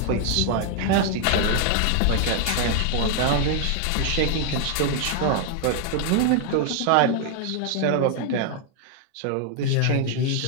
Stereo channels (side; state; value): both; different; correlation 0.00